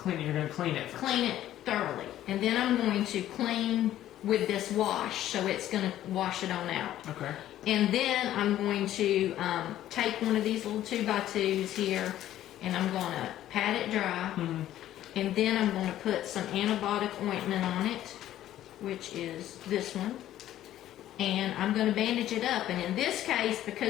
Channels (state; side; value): quieter; right; 12.8 dB